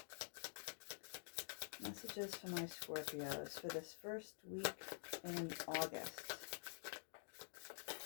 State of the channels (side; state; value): right; silent; digital silence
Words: Messages for my Scorpios for this first week in August.